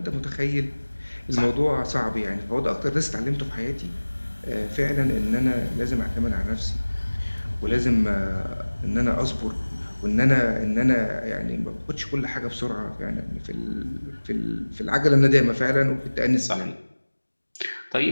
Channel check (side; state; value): both; inverted; correlation -1.00